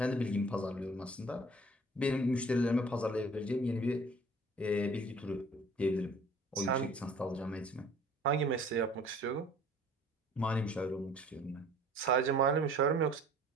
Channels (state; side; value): normal; both; correlation 0.51